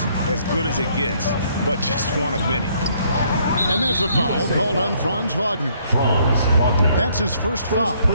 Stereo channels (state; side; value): inverted; both; correlation -0.66